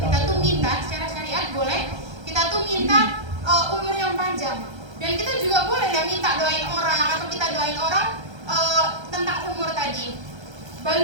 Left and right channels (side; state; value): left; late; 1.3 ms